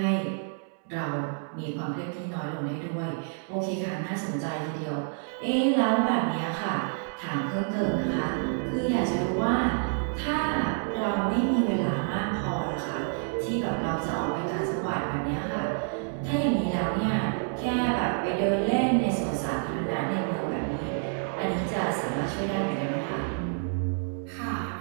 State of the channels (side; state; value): left; silent; 59 dB below the other